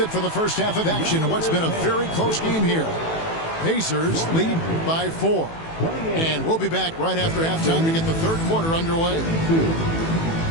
for the first half of action. What's been a very close game here. Pacers lead by 4. And we'll be back right after halftime to get the third quarter underway.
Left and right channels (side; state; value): right; late; 18 ms